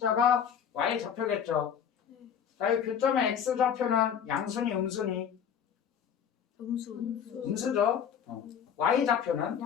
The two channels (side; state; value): right; quieter; 8.1 dB